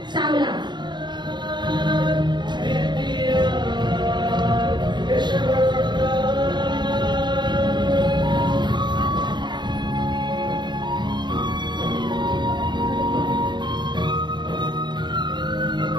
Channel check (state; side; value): late; left; 0.22 ms